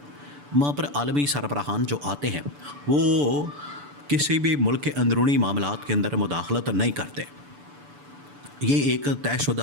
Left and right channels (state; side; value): late; left; 6.9 ms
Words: وہاں پر عالمی سربراہان جو آتے ہیں وہ کسی بھی ملک کے اندرونی معاملات کے اندر مداخلت نہیں کرتے۔ یہ ایک طے